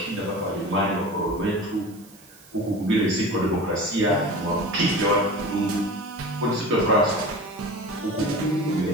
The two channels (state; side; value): noise; right; hiss, 25 dB below the sound